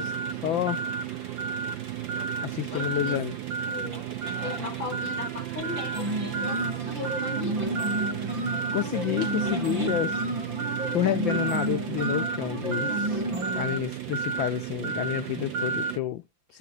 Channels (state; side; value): late; left; 5.8 ms